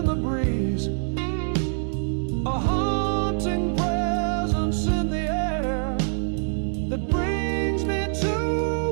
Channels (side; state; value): left; silent; 62 dB below the other